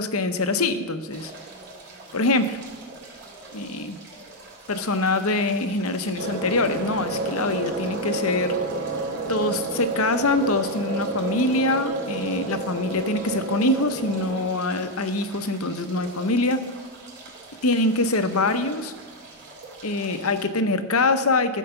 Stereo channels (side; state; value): both; normal; correlation 0.01